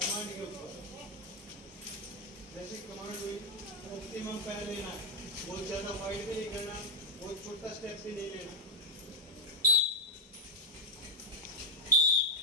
के ऊपर जैसे कमांड हुई, ऑप्टिमम पैर लेना है, बहुत ज्यादा वाइड भी नहीं करना, बहुत छोटा स्टेप भी नहीं लेना।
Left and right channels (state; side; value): normal; both; correlation -0.01